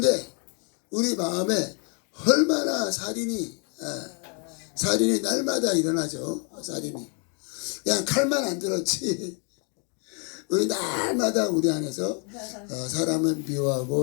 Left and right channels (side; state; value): right; quieter; 36.8 dB